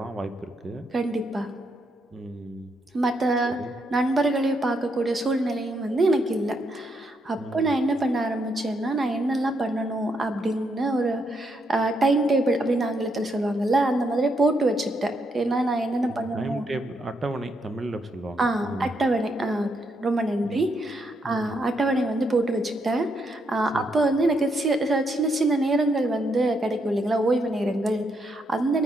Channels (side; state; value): both; normal; correlation 0.77